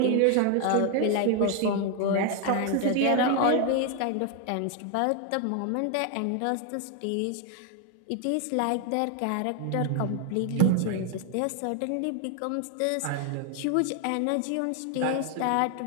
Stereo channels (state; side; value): different; both; correlation 0.00